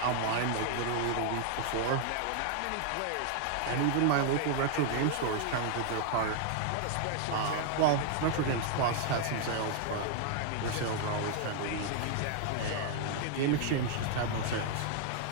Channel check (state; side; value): different; both; correlation 0.00